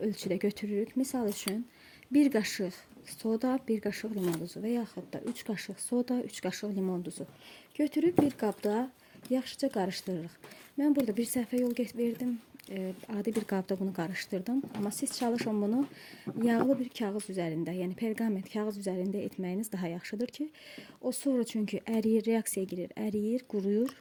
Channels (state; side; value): identical; both; correlation 1.00